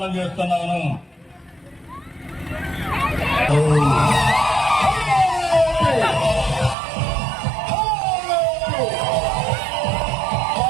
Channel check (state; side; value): drops out; left; at 6.8 s